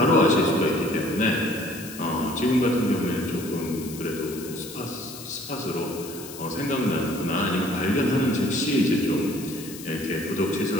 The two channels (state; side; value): noise; left; hiss, 14 dB below the sound